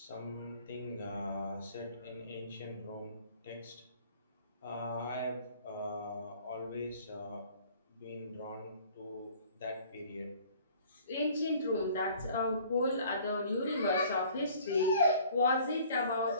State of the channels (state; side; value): inverted; both; correlation -0.53